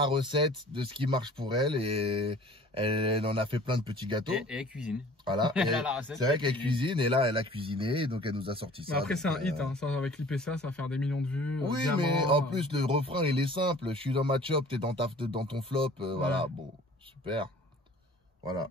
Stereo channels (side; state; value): both; normal; correlation 0.49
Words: recette de ce qui marche pour elle et elle en a fait plein de petits gâteaux. Et elle cuisine. Voilà. C'est vrai qu'elle cuisine et là, elle a cuisiné, donc elle nous a sorti ça. Mais après, c'est un hit, hein. Ça, avec l'IPCA, ça va faire des millions de vues. Oui, diamant, mais en plus, le refrain, il est simple. Je suis dans ma chop, t'es dans ton flop. Voilà, bon, super. Voilà.